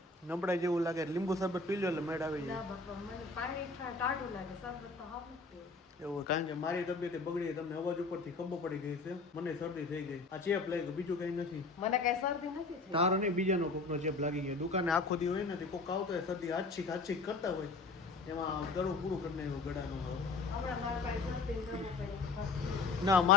નબળાઈ જેવું લાગે? લીંબુ શરબત પી લો એટલે મેડ આવી ના જાય. બાપા, મને પાણી ટાઢું લાગે, શરબત તો હાવ નથી. એવું? કારણ કે મારી તબિયત બગડી, તમને અવાજ ઉપરથી ખબર પડી ગઈ છે. મને શરદી થઈ ગઈ. આ ચેપ લાગી, બીજું કઈ નથી. મને કઈ શરદી નથી થઈ. તારો નહીં, બીજાનો કોકનો ચેપ લાગી ગયો. દુકાને આખો દી હોય ને કોક આવતો હોય શરદી આછીક કરતા હોય એમાં ગળું પૂરું કરી નાખ્યું ગળાનું. હમણાં મારા પાસે શરદી દવા પડી. ના,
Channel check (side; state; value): right; quieter; 3.7 dB